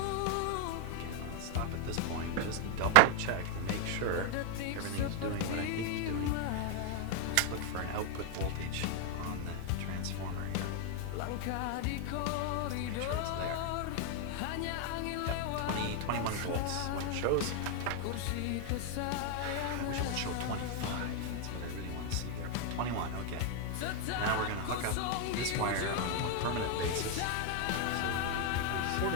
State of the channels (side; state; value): both; different; correlation 0.01